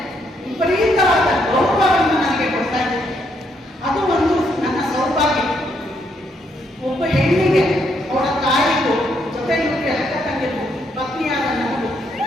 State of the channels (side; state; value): both; normal; correlation 0.75